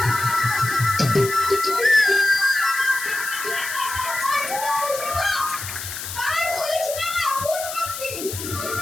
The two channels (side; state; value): left; noise; hiss, 8 dB below the sound